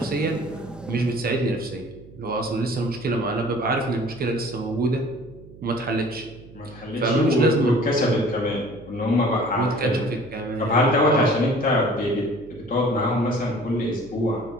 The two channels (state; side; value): noise; right; hum, 19 dB below the sound